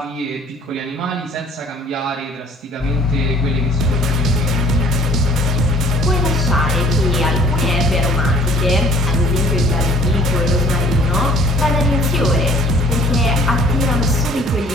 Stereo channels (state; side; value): normal; both; correlation 0.53